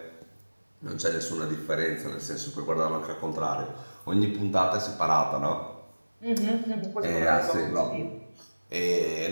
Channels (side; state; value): both; inverted; correlation -1.00